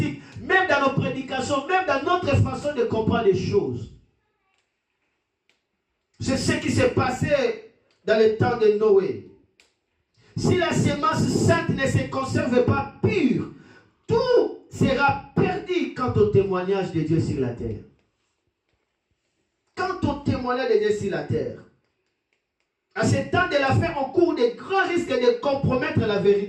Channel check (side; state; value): both; identical; correlation 1.00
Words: même dans nos prédications, même dans notre façon de comprendre les choses. C'est ce qui s'est passé dans le temps de Noé. Si la sémence sainte ne se conserve pas pure, tout sera perdu quant au témoignage de Dieu sur la terre. Quant au témoignage de Dieu sur la terre, À ce temps de la fin, on court de grands risques de compromettre la